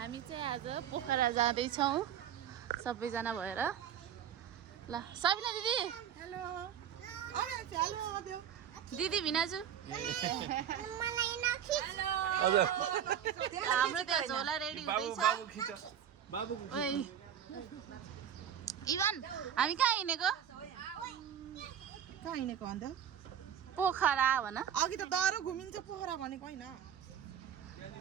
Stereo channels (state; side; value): quieter; left; 9.3 dB